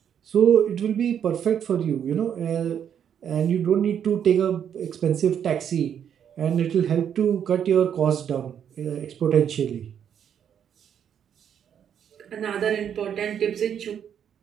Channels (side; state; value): left; quieter; 8.7 dB